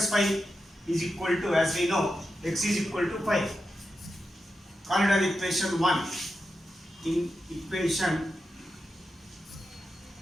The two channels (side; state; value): both; normal; correlation 0.89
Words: 5 is equal to, as we know, x is equal to 5. Call it as equation 1. In equation